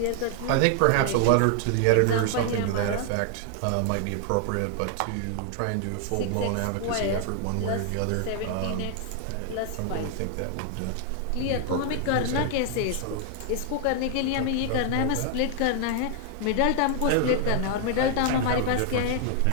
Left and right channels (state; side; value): different; both; correlation 0.00